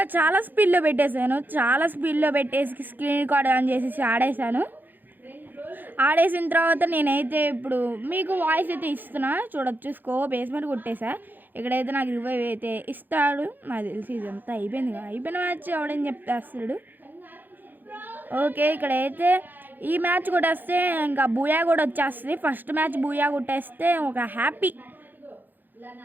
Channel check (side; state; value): left; late; 0.088 ms